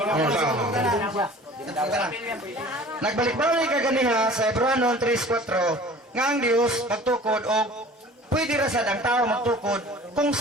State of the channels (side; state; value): both; normal; correlation 0.45